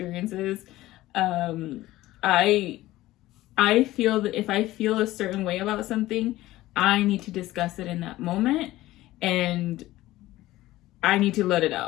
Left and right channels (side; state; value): right; quieter; 16.6 dB